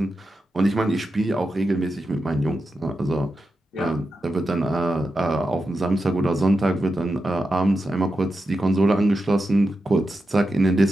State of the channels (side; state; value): both; normal; correlation 0.89